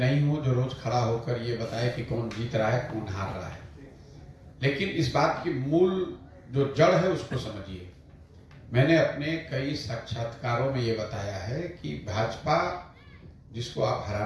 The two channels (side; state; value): both; identical; correlation 1.00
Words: हूँ जो रोज खड़ा होकर ये बताए कि कौन जीत रहा है, कौन हार रहा है। लेकिन इस बात की मूल जो जड़ है उसको समझिए। मैंने अपने कई साक्षात्कारों में ये बताया है कि भाजपा जिसको आप